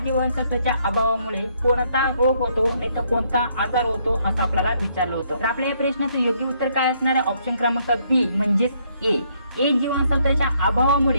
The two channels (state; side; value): inverted; both; correlation -0.70